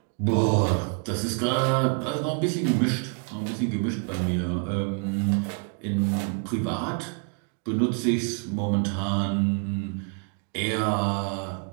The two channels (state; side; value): quieter; left; 38.5 dB